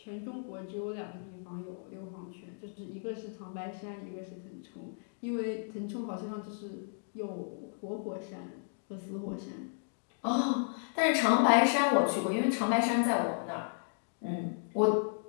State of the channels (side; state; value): right; silent; digital silence